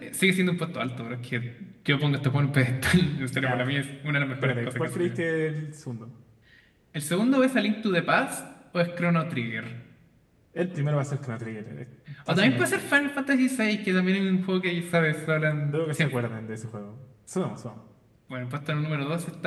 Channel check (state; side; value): identical; both; correlation 1.00